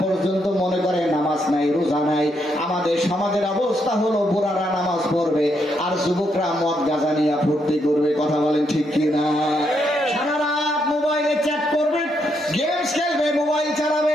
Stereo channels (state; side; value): normal; both; correlation 0.78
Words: পর্যন্ত মনে করে নামাজ নাই, রোজা নাই। আমাদের সমাজের অবস্থা হলো বুড়ারা নামাজ পড়বে আর যুবকরা মদ গাঁজা নিয়ে ফুর্তি করবে। কথা বলেন ঠিক কিনা? সারা রাত মোবাইলে চ্যাট করবে, গেমস খেলবে, মোবাইল চালাবে,